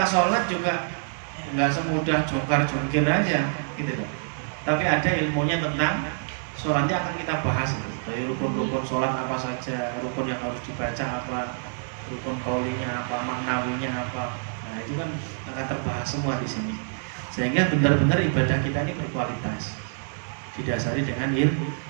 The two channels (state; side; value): silent; left; digital silence